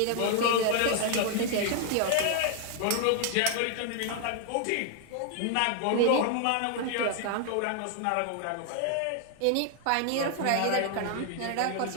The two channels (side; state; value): both; different; correlation 0.00